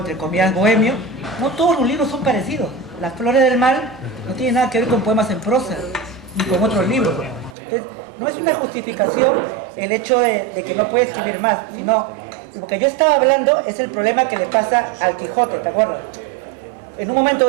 comillas, bohemio, no todos los libros son parecidos. Las Flores del Mal no tienen nada que ver con poemas en prosa, ni con otros libros. Entonces, no es una justificación el hecho de que no puede escribir más, sino, lo que yo estaba hablando es el problema que le pasa al Quijote, ¿te acuerdas? En un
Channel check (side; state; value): left; drops out; at 7.6 s